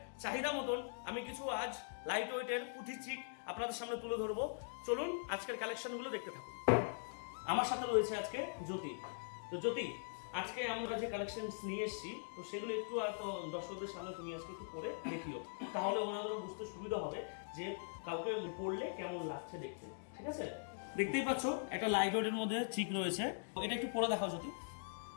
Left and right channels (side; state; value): right; silent; digital silence